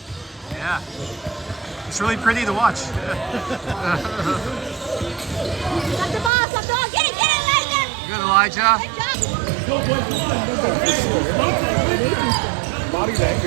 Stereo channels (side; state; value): left; drops out; at 6.3 s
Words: Yeah. It's really pretty to watch. Stop the ball, stop the ball. Get it, Elijah! Good, Elijah. Good job. Body